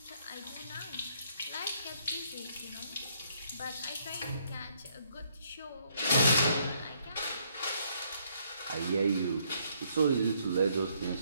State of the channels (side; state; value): both; inverted; correlation -0.70